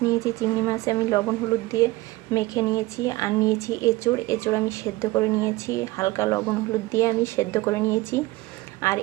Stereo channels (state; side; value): quieter; left; 19.8 dB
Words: নিয়েছি। চিংড়ি মাছ আমি লবণ হলুদ দিয়ে মেখে নিয়েছি। আর নিয়েছি এঁচোড় আমি সেদ্ধ করে নিয়েছি, হালকা লবণ হলুদ দিয়ে আমি সেদ্ধ করে নিয়েছি। আর